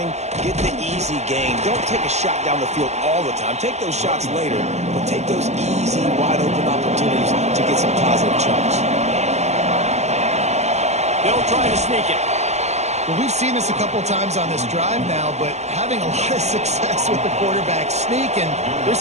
Get the easy gain. Don't take a shot down the field all the time. Take those shots later, but take those easy, wide-open opportunities to get some positive chunks. They'll try to sneak it. Well, we've seen this a couple times on this drive now, but having a lot of success with the quarterback sneak, and there's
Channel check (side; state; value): left; late; 0.33 ms